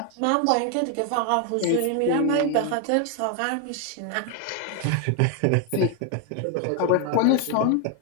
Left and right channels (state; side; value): different; both; correlation 0.01